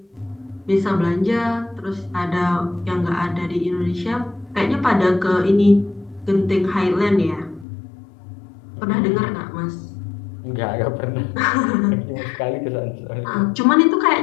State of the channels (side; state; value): right; drops out; at 7.7 s